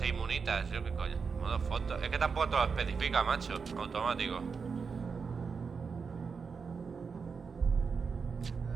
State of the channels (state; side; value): quieter; left; 5.5 dB